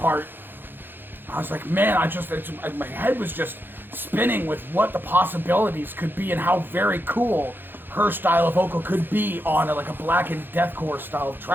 I was like, man, my head was just spinning with what the possibilities could be and how very cool her style of vocal could be on a blackened deathcore style of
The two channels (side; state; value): left; late; 0.098 ms